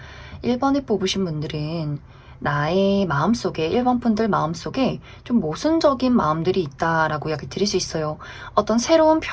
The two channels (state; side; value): identical; both; correlation 1.00